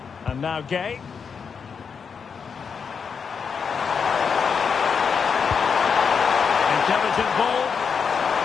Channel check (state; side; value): quieter; right; 6.2 dB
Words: And now Gay. Intelligent ball.